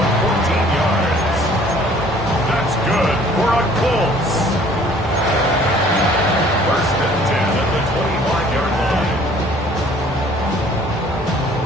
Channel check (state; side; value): normal; both; correlation 0.55